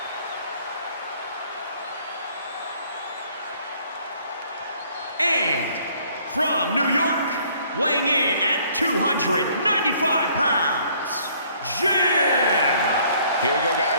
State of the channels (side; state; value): both; inverted; correlation -0.61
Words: And from New York, weighing in at 295 pounds, Jim! Here we go,